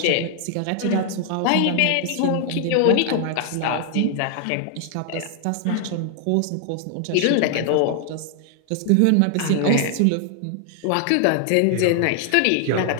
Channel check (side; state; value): both; different; correlation 0.00